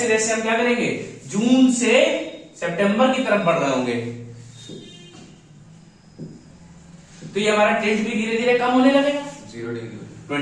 जैसे हम क्या करेंगे, जून से सितंबर की तरफ बढ़ रहे होंगे, तो ये हमारा टिल्ट भी धीरे धीरे कम होने लगेगा, 0 डिग्री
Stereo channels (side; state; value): both; identical; correlation 1.00